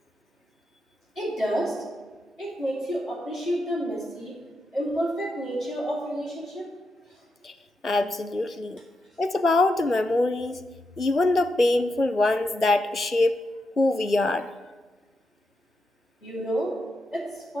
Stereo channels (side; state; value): both; normal; correlation 0.85